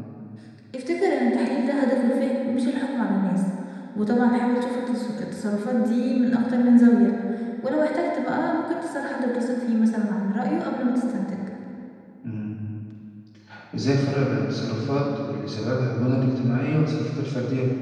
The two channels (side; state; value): both; identical; correlation 1.00